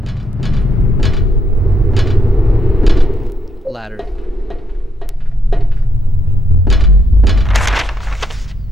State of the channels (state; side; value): normal; both; correlation 0.75